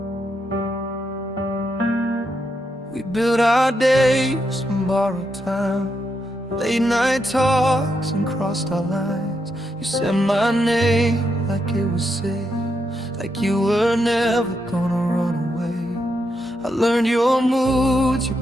We build our days from borrowed time, late night talks and crossed our lines. You said my name like it was safe, like you were never gonna run away. I learned your moods, your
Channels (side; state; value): both; normal; correlation 0.82